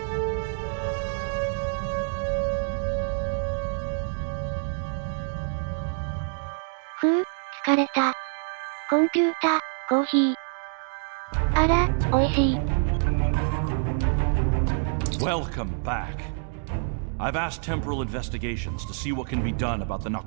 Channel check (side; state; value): left; silent; 60 dB below the other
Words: Phew, 疲れた。コンピュータ、コーヒー。あら、美味しい。Welcome back. I've asked temporal investigations to see what can be done about the